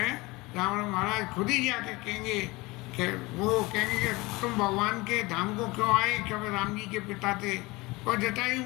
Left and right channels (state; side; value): quieter; right; 22.6 dB